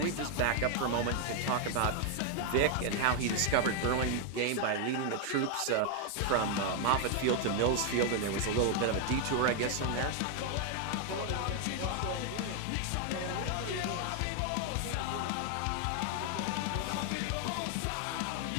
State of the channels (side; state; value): both; different; correlation 0.00